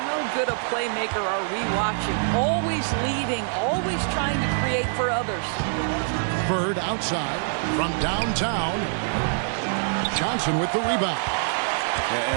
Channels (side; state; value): left; silent; digital silence